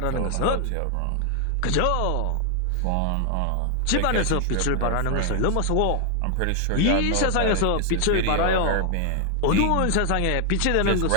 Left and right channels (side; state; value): both; different; correlation 0.00